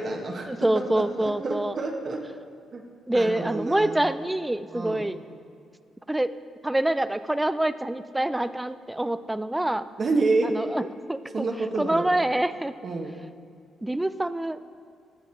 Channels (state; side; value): normal; both; correlation 0.96